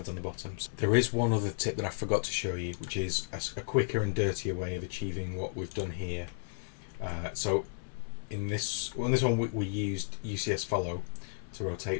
on the bottom. So there is one other tip that I forgot to show you, which is a quicker and dirtier way of achieving what we've done here. So in this one we used UCS follow to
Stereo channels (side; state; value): right; silent; 56 dB below the other